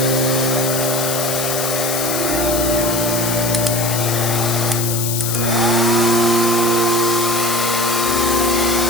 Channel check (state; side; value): noise; left; hiss, 2 dB below the sound